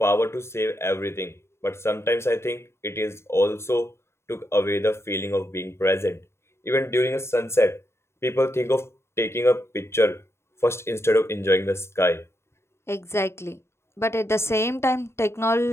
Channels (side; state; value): right; late; 0.13 ms